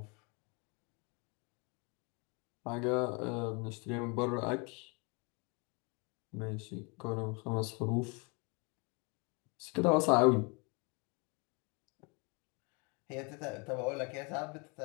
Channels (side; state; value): right; quieter; 31.4 dB